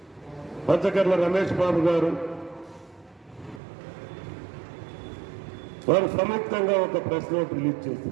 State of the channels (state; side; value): drops out; left; at 3.6 s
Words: పంచకర్ల రమేష్ బాబు గారు, వారు సంయుక్తంగా ఒక ప్రెస్ నోట్ రిలీజ్